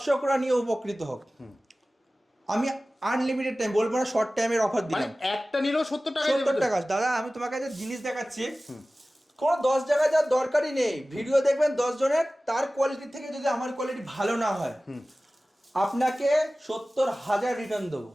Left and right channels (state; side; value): normal; both; correlation 0.97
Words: নিয়ে উপকৃত হোক। আমি আনলিমিটেড টাইম বলবো না, শর্ট টাইমের অফার দিলাম, একটা নিলেও 70 টাকা। 70 টাকা। দাদা, আমি তোমাকে যে জিনিস দেখাচ্ছি, কোনো 10 জায়গায় যাওয়ার দরকারই নেই। ভিডিও দেখবেন 10 জনের, তার কোয়ালিটি থেকে যদি আমার কোয়ালিটি ভালো না হয়, আপনাকে 70,000 রিটার্ন দেবো।